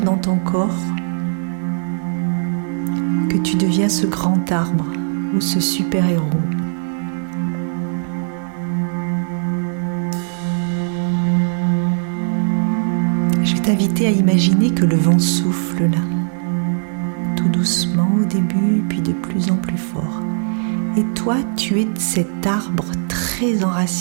dans ton corps que tu deviens ce grand arbre ou ce super-héros. Je vais t'inviter à imaginer que le vent souffle là, tout doucement au début, puis de plus en plus fort. Et toi, tu es cet arbre très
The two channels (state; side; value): silent; left; 62 dB below the other